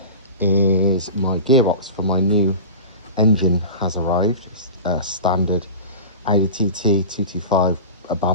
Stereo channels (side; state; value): both; inverted; correlation -0.32